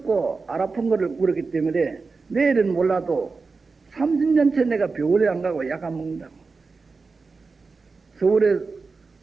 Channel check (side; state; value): left; quieter; 4.3 dB